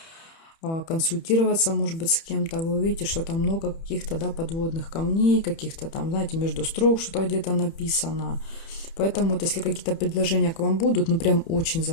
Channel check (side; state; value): right; late; 30 ms